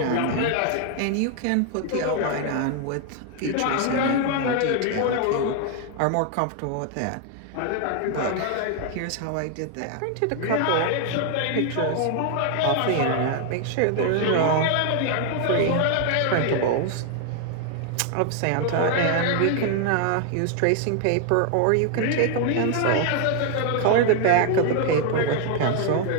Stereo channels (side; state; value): both; different; correlation 0.00